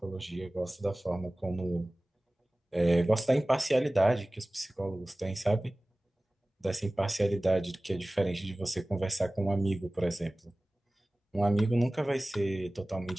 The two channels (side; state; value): both; normal; correlation 0.98